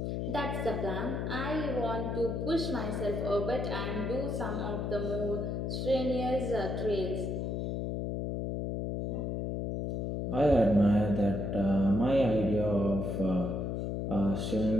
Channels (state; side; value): noise; left; hum, 2 dB below the sound